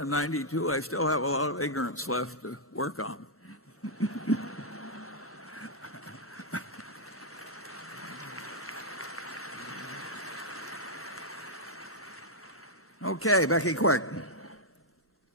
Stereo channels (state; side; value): normal; both; correlation -0.05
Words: 92, I still have a lot of ignorance left to work on. Okay, Becky, quick.